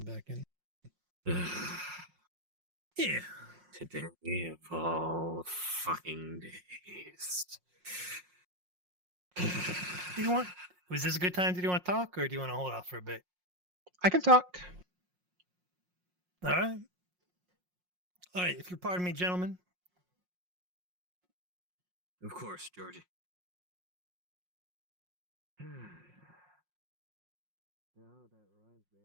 in. Yeah. Today of all fucking days. Do you want? Was this a good time? Did you want to talk, or do you want to hold off for a bit? I can talk. All right. All right. If you'll pardon me, gentlemen. Of course, Georgie.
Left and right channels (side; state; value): left; late; 5.6 ms